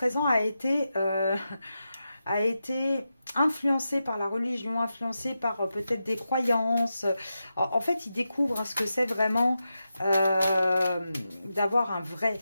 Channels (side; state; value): both; inverted; correlation -0.89